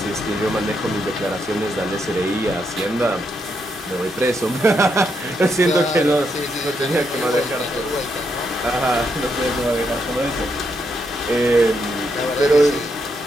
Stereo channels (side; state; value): both; normal; correlation 0.80